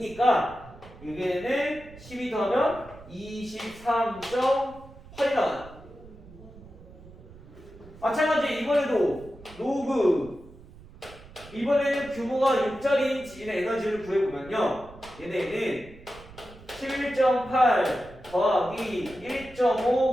얘네는 12 더하면 23.8이 나와요. 마찬가지 이번에도 로그 이번에는 규모가 6짜리인 지진의 에너지를 구해보면요 얘네는 11.8 더하기 1.5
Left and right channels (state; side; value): noise; right; rumble, 20 dB below the sound